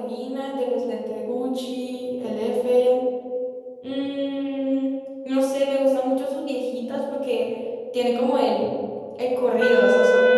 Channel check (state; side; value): identical; both; correlation 1.00